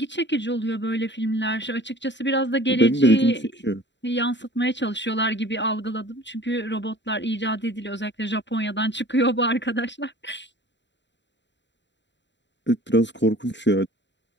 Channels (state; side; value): late; right; 0.52 ms